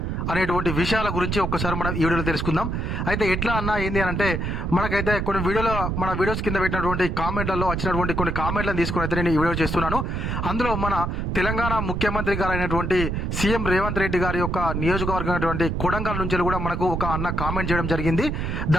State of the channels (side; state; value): right; noise; rumble, 2 dB below the sound